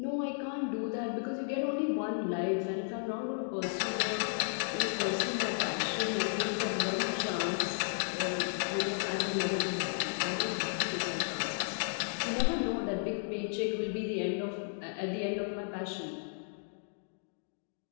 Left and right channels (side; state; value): right; silent; digital silence